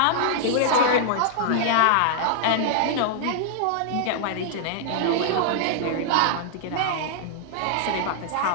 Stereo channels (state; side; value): different; both; correlation -0.01